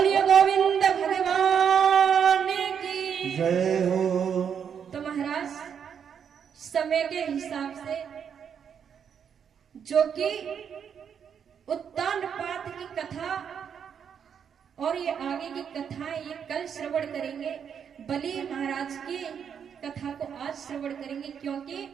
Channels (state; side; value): quieter; left; 7.7 dB